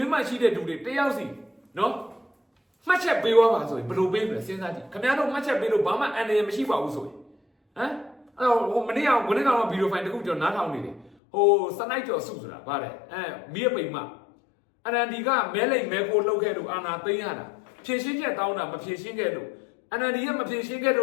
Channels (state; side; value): drops out; right; at 11.2 s